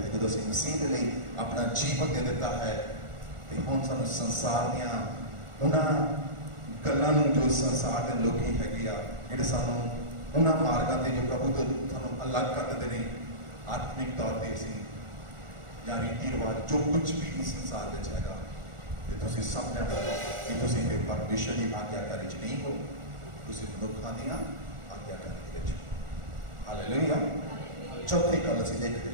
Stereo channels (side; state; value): left; late; 1.4 ms